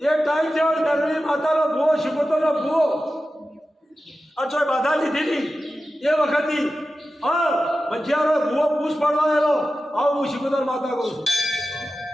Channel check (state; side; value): normal; both; correlation 0.93